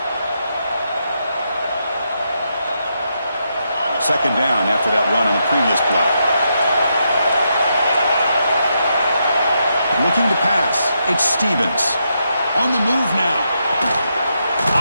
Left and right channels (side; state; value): both; inverted; correlation -0.81